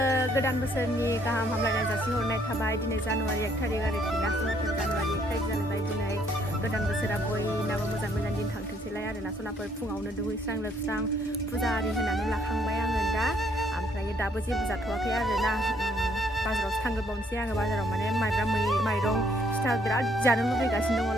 गोदान बोसोरनि गाहाम हामलायनाय जासिहरनाय थाबाय दिनै जानुवारि 1 थारिख आरोखि ना सनाफोर जानुवारि 1 थारिख जालायबाय दिनै गोदान बोसोरा बयनाबो मोजां मोजां दिन थांथोंसैलाय आरोना सनाफोर फुङावनो दुगैस्रां लोबस्रां फुजा आरि होनानै लाखांबाय आङो दा ओमफ्राय दाबो जेबो जाथ'वाखै आरोना बाजारावसो थांग्रोबावनोसै आङो बाजाराव माने माइरं फिथा बिराद जानो लुबैगासिनो दङ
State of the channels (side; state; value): both; normal; correlation 0.67